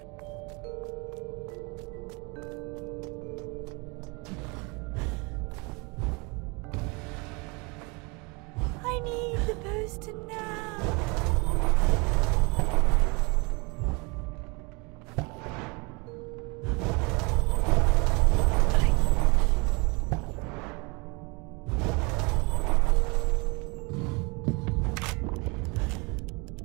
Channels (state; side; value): quieter; left; 29.1 dB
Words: I need the poster now.